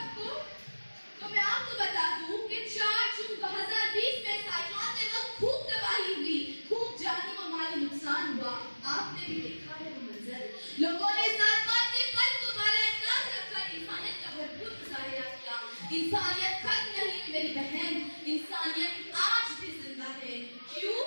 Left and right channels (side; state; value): both; inverted; correlation -1.00